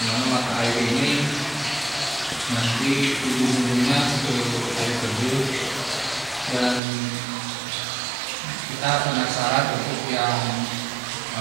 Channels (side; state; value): left; drops out; at 6.8 s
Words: mata air ini nanti ujung-ujungnya ke air terjun, dan kita penasaran untuk yang